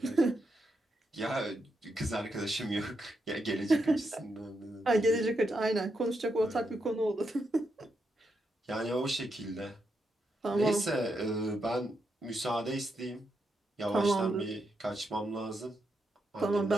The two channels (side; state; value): both; normal; correlation 0.83